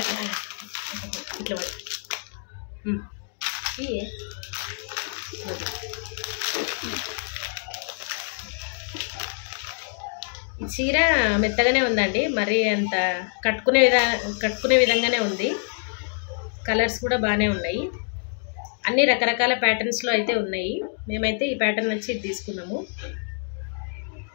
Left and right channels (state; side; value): silent; right; 61 dB below the other